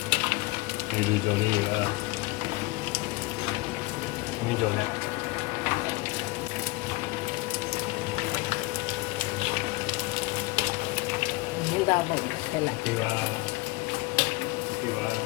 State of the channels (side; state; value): right; quieter; 21.9 dB